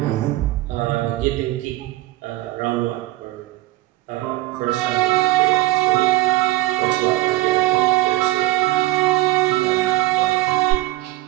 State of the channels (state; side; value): quieter; left; 18.1 dB